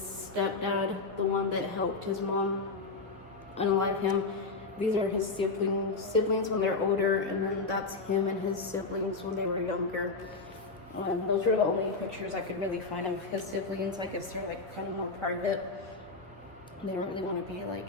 stepdad, the one that helped his mom unalive him. These are his siblings when they're older, and then that's him and his siblings when they were younger. Those are the only pictures I could really find of his siblings. I guess they're like kind of more private. They don't really want to be like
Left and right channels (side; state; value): right; quieter; 3.9 dB